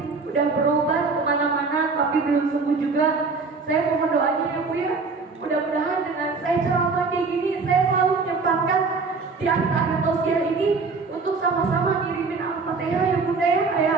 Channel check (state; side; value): quieter; left; 4.3 dB